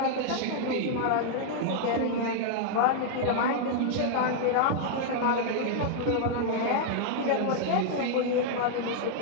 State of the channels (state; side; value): different; both; correlation -0.01